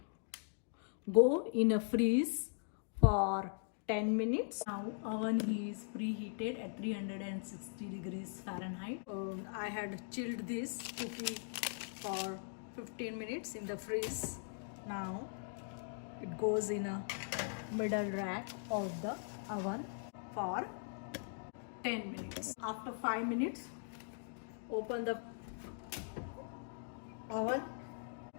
go in a freeze for 10 minutes. Now oven is preheated at 360 degrees Fahrenheit. I had chilled this cookie for 15 minutes in the freeze. Now it goes in a middle rack of the oven for 10 minutes. After 5 minutes, open the oven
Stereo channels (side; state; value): right; silent; digital silence